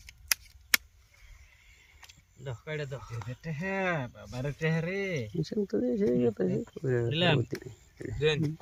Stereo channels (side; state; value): both; identical; correlation 1.00